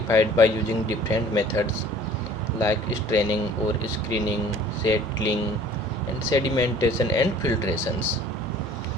by using different methods like straining or screening, settling, and sedimentation and filtrations.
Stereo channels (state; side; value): normal; both; correlation 0.50